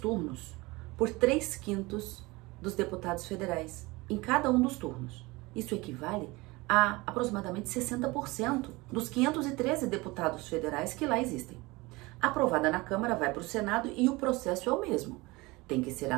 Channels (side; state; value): left; quieter; 22.8 dB